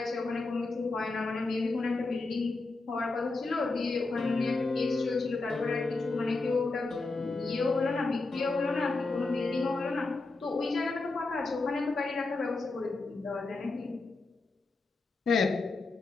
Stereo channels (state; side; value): quieter; right; 3.5 dB